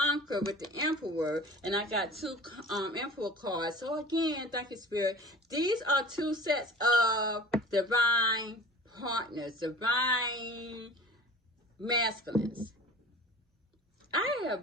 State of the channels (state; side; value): normal; both; correlation 0.41